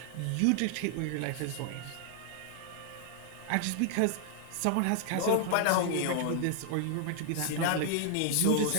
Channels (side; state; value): both; different; correlation 0.00